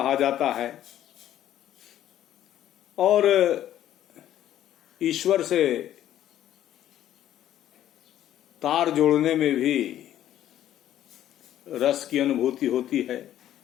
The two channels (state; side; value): quieter; right; 12.0 dB